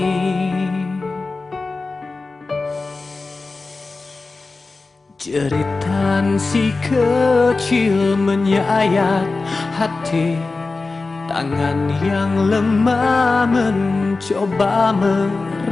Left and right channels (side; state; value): right; quieter; 3.7 dB